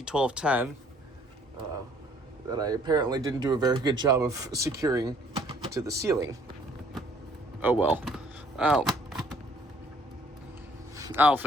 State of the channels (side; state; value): both; normal; correlation 0.60